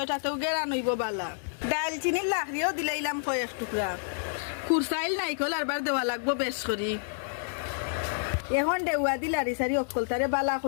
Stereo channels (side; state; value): right; silent; digital silence